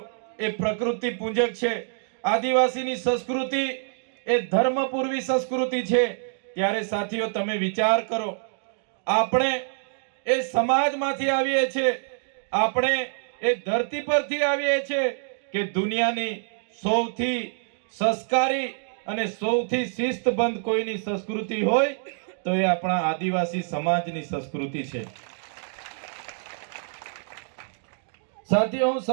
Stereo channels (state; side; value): silent; left; digital silence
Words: એ પ્રકૃતિ પૂજક છે. આદિવાસીની સંસ્કૃતિ એ ધર્મપૂર્વી સંસ્કૃતિ છે. ત્યારે સાથીઓ તમે વિચાર કરો, આપણે એ સમાજમાંથી આવીએ છીએ, આપણે એ ધરતી પરથી આવીએ છીએ કે દુનિયાની સૌથી સંસ્કારી અને સૌથી શિસ્તબદ્ધ કોઈની સંસ્કૃતિ હોય તો એ આપણા આદિવાસી સમાજની સંસ્કૃતિ છે. સાથીઓ, હું